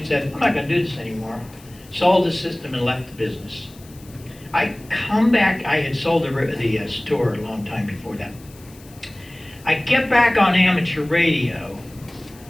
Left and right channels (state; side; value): noise; left; hiss, 24 dB below the sound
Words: said, I'm not gonna do this anymore. Sold the system and left the business. I come back, I had sold the store a long time before that. I get back on amateur radio,